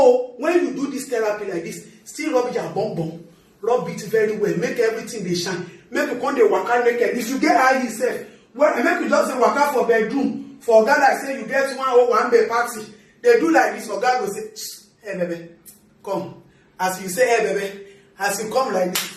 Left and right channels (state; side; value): identical; both; correlation 1.00